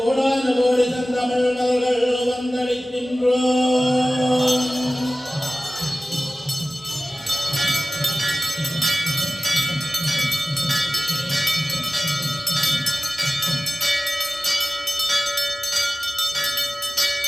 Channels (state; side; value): normal; both; correlation 0.96